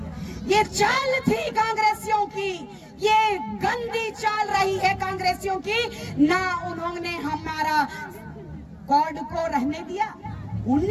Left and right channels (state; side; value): identical; both; correlation 1.00